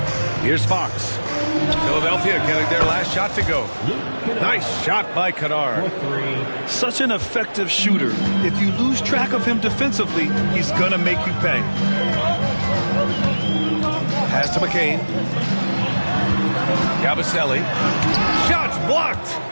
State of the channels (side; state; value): both; inverted; correlation -1.00